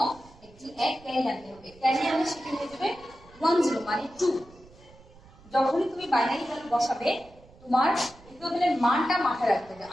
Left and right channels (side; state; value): right; noise; rumble, 24 dB below the sound